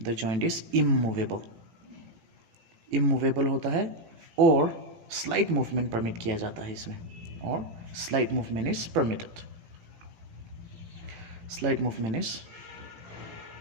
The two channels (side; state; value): left; late; 18 ms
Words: इज इमूवेबल होता है और स्लाइट मूवमेंट परमिट किया जाता है इसमें, और slight movement is permitted. Slight movement is